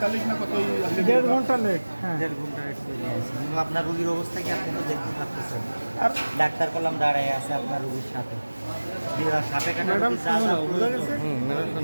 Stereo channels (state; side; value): inverted; both; correlation -1.00